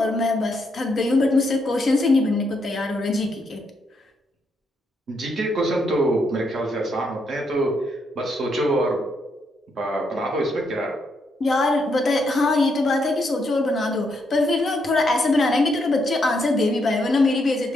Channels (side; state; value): both; normal; correlation 0.78